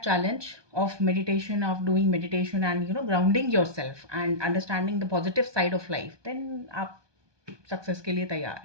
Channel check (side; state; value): left; late; 1.2 ms